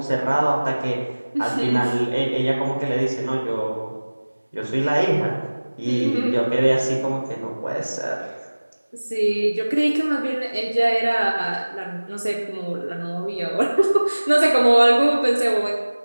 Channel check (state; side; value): inverted; both; correlation -1.00